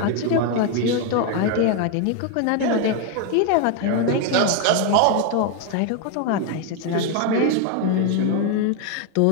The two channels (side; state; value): both; different; correlation 0.01